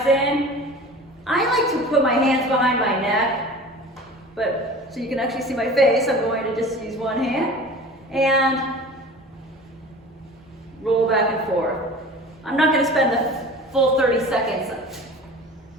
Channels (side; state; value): both; normal; correlation 0.40